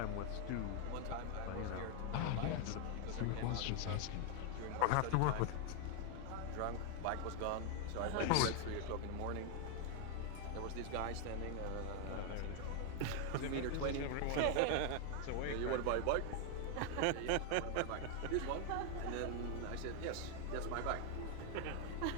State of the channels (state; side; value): different; both; correlation 0.00